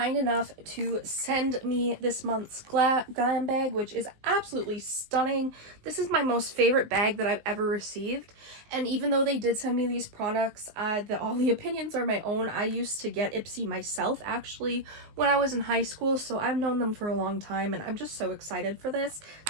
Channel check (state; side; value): late; left; 19 ms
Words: enough to send me this month's Glam Bag, which is absolutely stunning. This is my most favorite bag that I've ever received. And even though they did send me these products, all the opinions are my own. I used to get Ipsy myself actually when I was in high school, so I've known them for a long time and I'm just so excited for this.